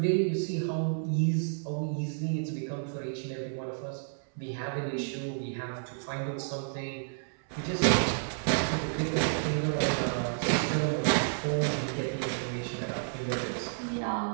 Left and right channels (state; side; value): silent; left; 57 dB below the other